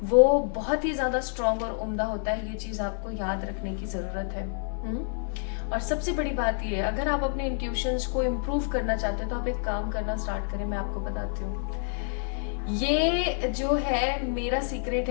वो बहुत ही ज्यादा स्ट्रांग और उम्दा होता है। ये चीज आपको याद रखने की जरूरत है। और सबसे बड़ी बात ये है, अगर आप अपने इंट्यूशंस को इम्प्रूव करना चाहते हो तो आप एक काम करना स्टार्ट करें। मैं आपको बताती हूँ, ये जो है मेरा सीक्रेट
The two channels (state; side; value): silent; right; digital silence